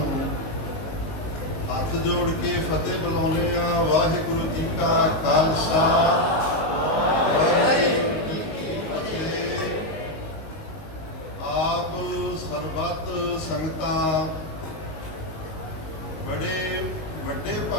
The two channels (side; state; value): right; late; 19 ms